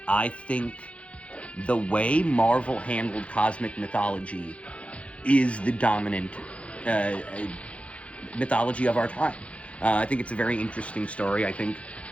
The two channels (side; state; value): right; late; 0.063 ms